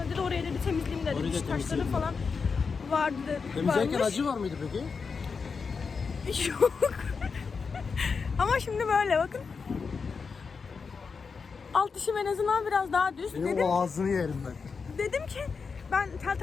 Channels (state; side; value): quieter; right; 5.2 dB